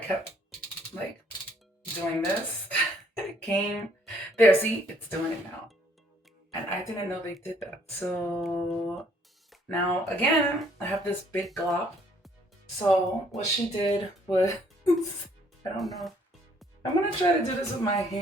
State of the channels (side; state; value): both; normal; correlation 0.63